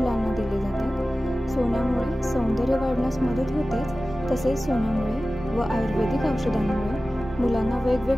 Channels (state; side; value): normal; both; correlation 0.96